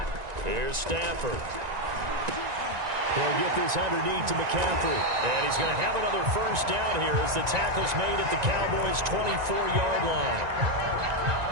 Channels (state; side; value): late; left; 1.9 ms